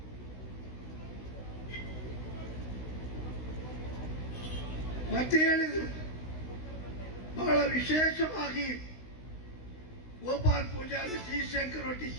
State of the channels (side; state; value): right; late; 16 ms